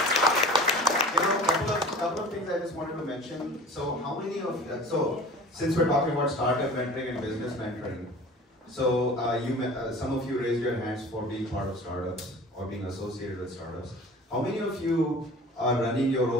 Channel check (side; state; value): both; normal; correlation 0.41